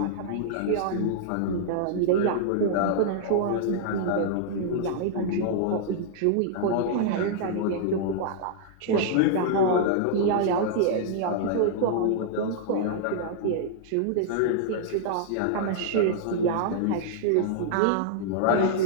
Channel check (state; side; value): different; both; correlation -0.01